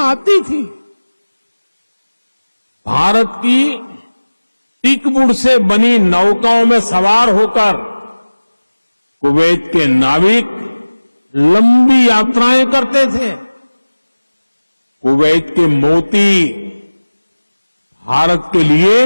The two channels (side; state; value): both; inverted; correlation -1.00